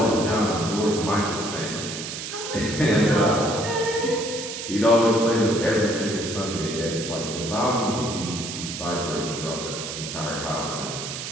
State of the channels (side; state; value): right; noise; hiss, 7 dB below the sound